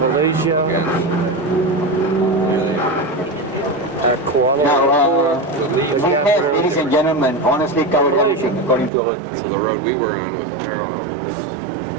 at Kuala Now, Lumpur, the we have, capital. ladies and gentlemen, honestly covered everything according to our... The road we were on was narrow.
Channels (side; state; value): left; drops out; at 8.9 s